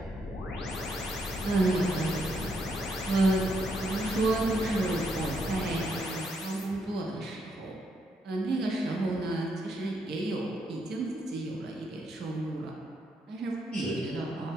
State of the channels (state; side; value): normal; both; correlation 0.76